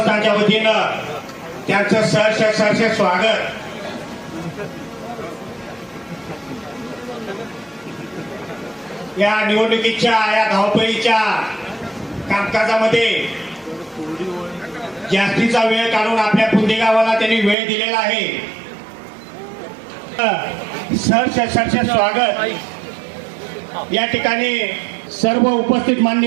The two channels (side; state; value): left; drops out; at 17.6 s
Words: वतीनं त्यांचं सहर्ष स्वागत. या निवडणुकीच्या या धावपळीच्या कामकाजामध्ये जास्तीचा वेळ काढून आपल्या पुंदी गावाला त्यांनी वेळ दिलेला आहे. सहर्ष स्वागत. या ठिकाणी सर्व उपस्थित